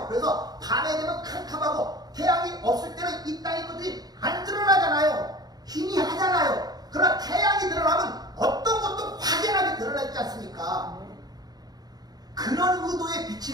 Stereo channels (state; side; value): late; left; 0.19 ms